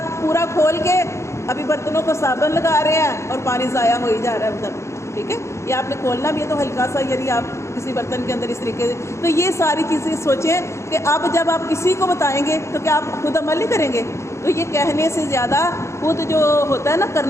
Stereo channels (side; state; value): right; late; 0.14 ms